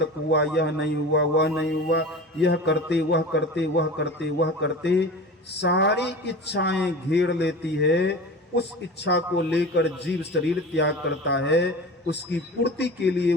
हुआ, यह नहीं हुआ, वह नहीं हुआ, यह करते, वह करते, वह करते, वह करते, सारी इच्छाएं घेर लेती है। उस इच्छा को लेकर जीव शरीर त्याग करता है, उसकी पूर्ति के लिए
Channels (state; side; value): normal; both; correlation 0.34